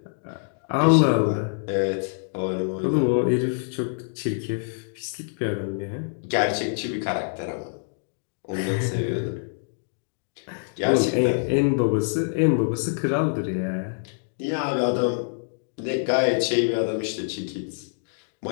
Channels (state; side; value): silent; right; digital silence